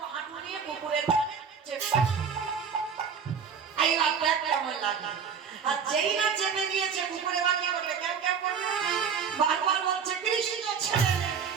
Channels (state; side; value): quieter; left; 6.6 dB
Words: হাঁটু নিয়ে কুকুরের কানে চেপে। এইবার দেখ কেমন লাগে। আর যেই না চেপে দিয়েছে, কুকুরে বাকি করবে, কেউ কেউ করবে, বারবার বলছে, কৃষ্ণ ছেড়ে দে,